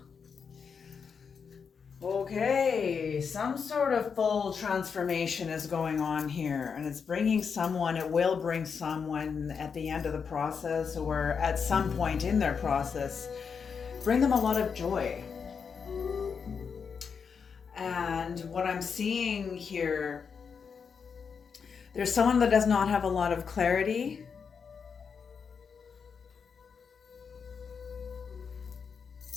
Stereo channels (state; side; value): quieter; right; 6.1 dB